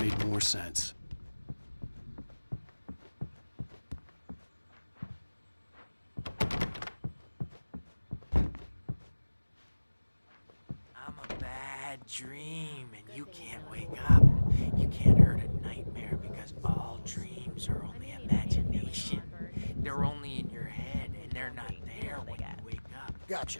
more sense. I'm a bad dream, and you can't wake up. You can't hurt a nightmare because all dreams are only imagination. They're only in your head, and they're not there when you wake up. Gotcha.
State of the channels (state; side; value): inverted; both; correlation -1.00